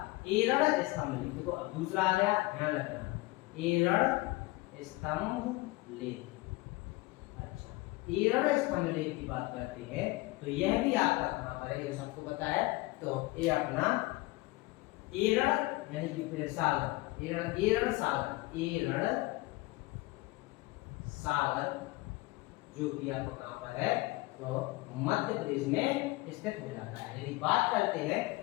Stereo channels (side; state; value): right; quieter; 21.4 dB